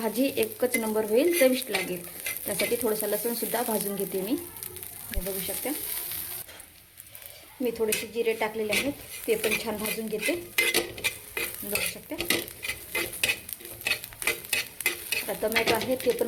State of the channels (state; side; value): identical; both; correlation 1.00